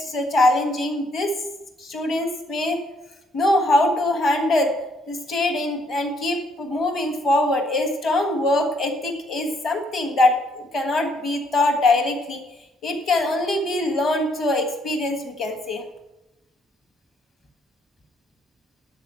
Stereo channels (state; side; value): normal; both; correlation 0.69